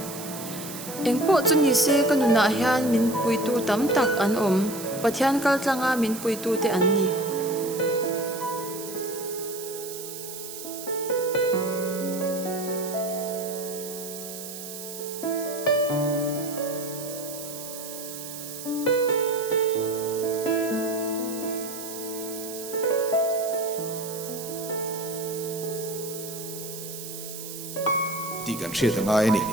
engpo chuni se kanuna hian min puitu tam tak an om pathian kal tlanga min puitu te an ni ti kan hriat anga ni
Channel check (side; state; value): right; noise; hiss, 10 dB below the sound